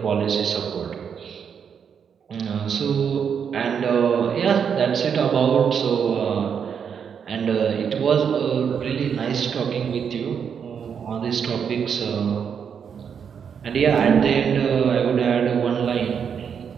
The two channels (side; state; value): left; quieter; 7.2 dB